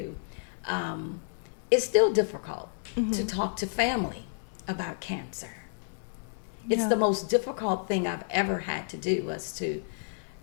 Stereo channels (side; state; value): right; silent; digital silence